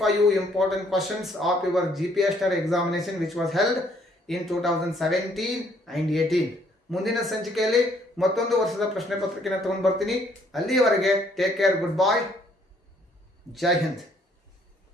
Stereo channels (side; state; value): both; normal; correlation 0.65